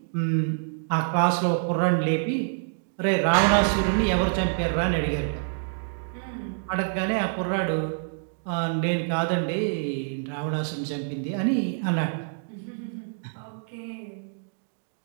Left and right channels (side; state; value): left; silent; digital silence